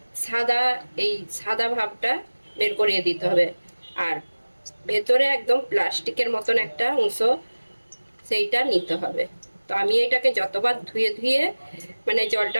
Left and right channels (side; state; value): both; inverted; correlation -1.00